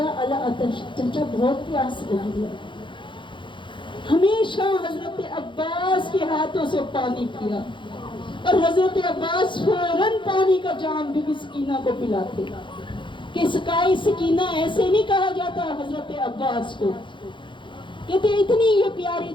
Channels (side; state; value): right; late; 0.23 ms